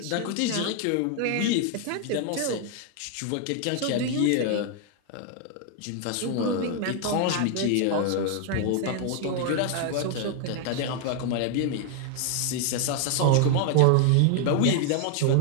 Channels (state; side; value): different; both; correlation 0.00